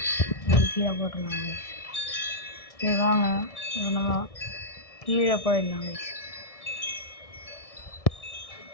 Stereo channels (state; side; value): late; right; 1.6 ms